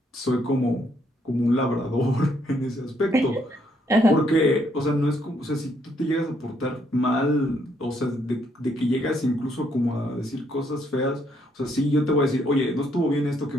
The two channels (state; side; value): normal; both; correlation 0.71